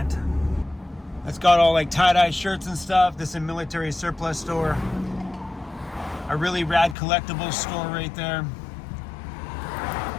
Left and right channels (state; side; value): drops out; right; at 7.0 s